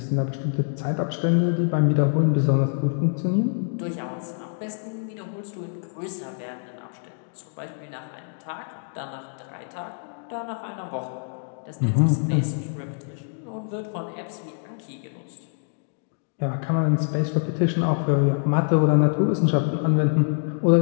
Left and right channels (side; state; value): right; silent; digital silence